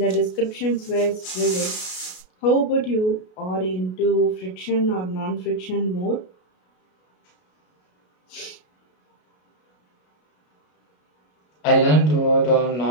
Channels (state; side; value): late; right; 33 ms